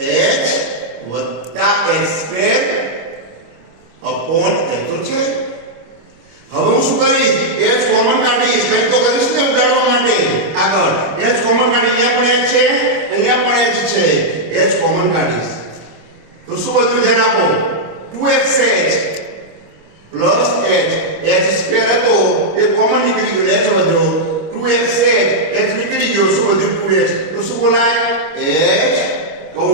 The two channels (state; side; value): late; left; 26 ms